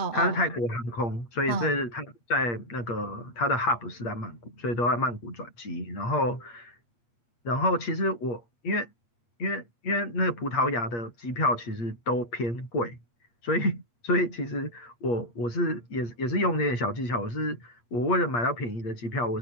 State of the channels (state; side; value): late; right; 8.4 ms